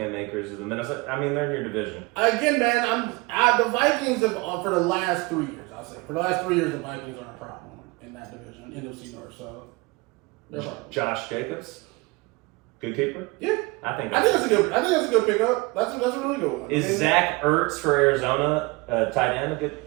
Akers of the Minnesota. I mean, they're in your division. Again, man, the Vikings have, for the last 3 years, I'll say. For the last 3 years, the Vikings are a problem in that division, NFC North, so they're a problem. Josh Jacobs? Good keeper? Yeah. I think that's a good pickup. That's a really good one. Is Zach Ertz for Arizona tight end a good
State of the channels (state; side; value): quieter; left; 24.9 dB